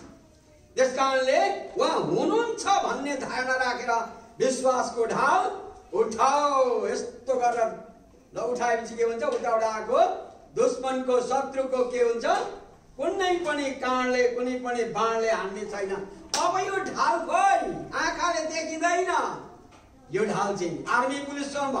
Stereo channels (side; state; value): both; identical; correlation 1.00